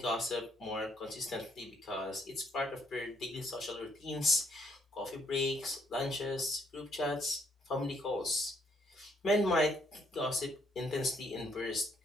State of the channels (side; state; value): both; normal; correlation 0.69